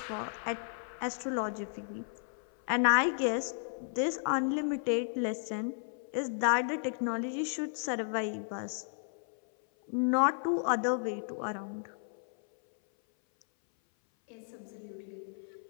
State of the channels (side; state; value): right; silent; 55 dB below the other